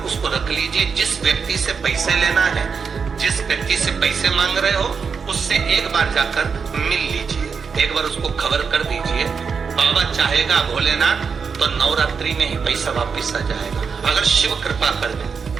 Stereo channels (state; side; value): quieter; left; 5.8 dB